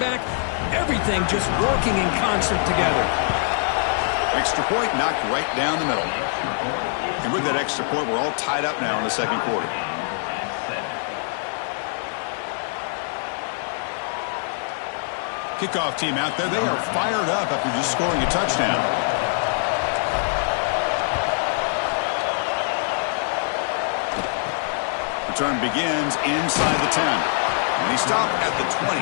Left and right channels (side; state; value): right; silent; 63 dB below the other